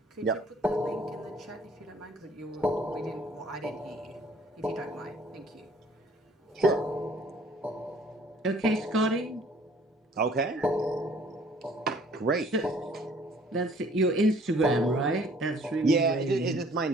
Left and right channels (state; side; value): normal; both; correlation 0.56